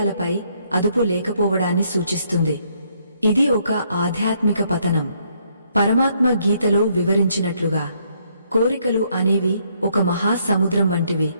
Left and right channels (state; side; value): inverted; both; correlation -0.71